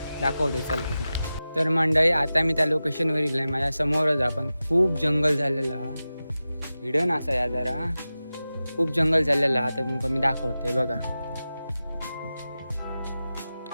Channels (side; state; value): both; inverted; correlation -0.94